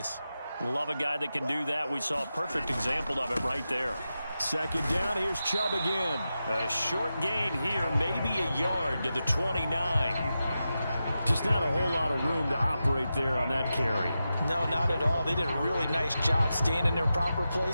Love a guy that can do that. We saw a perfect example of it right there. 2nd down, here's Chubb again. A short gain here, maybe a yard to the 29. Just not a whole lot of room to operate there on that carry. No, not at all. They did a really nice job staying in their proper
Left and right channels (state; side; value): inverted; both; correlation -0.91